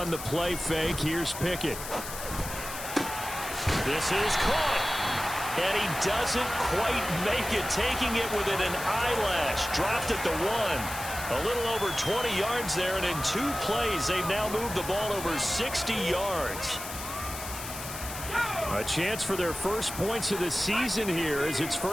the play fake. Here's Pickett. This is caught. And he doesn't quite make it, taking it within an eyelash. Dropped at the 1. A little over 20 yards there, and in 2 plays, they've now moved the ball over 60 yards. A chance for their first points of the season here as it's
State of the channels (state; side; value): noise; left; hiss, 9 dB below the sound